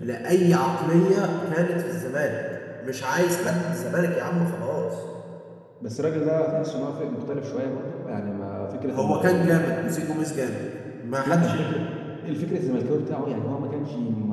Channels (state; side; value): identical; both; correlation 1.00